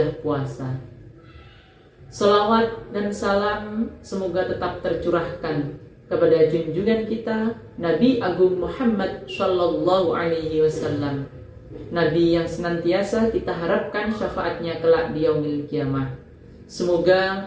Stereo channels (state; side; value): identical; both; correlation 1.00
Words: puasa. Selawat dan salam semoga tetap tercurahkan kepada junjungan kita Nabi Agung Muhammad Sallallahu Alaihi Wasallam, Nabi yang senantiasa kita harapkan syafaatnya kelak di yaumil kiamah.